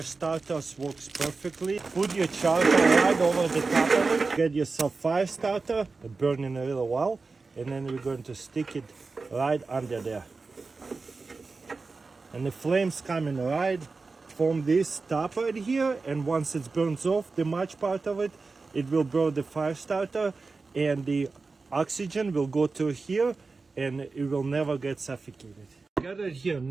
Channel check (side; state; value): left; quieter; 4.1 dB